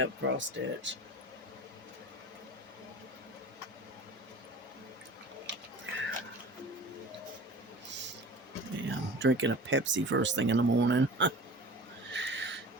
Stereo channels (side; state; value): both; normal; correlation 0.38